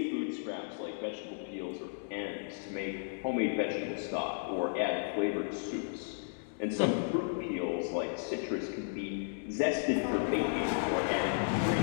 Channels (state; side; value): silent; right; digital silence